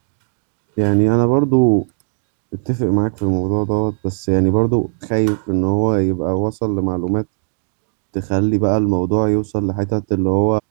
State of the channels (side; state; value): left; silent; 56 dB below the other